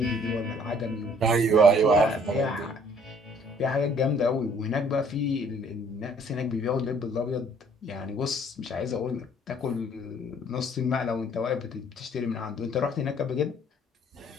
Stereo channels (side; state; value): both; normal; correlation 0.59